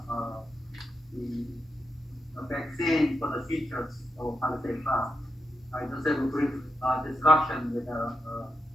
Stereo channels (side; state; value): both; normal; correlation 0.85